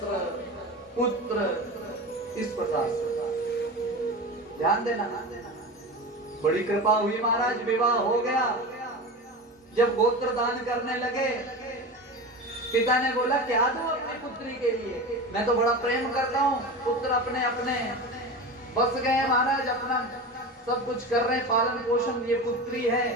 पुत्र, इस प्रकार से। ध्यान देना, बड़ी कृपा हुई महाराज, विवाह हो गया। जब गोत्र दान करने लगे, पिता ने बोला क्या दूं अपनी पुत्री के लिए? मैं तो बड़ा प्रेम करता हूँ। पुत्र अपने अपने बस गए महाराज, अपना सब कुछ कर रहे हैं, पालन पोषण। ये पुत्री है,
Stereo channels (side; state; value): both; normal; correlation 0.28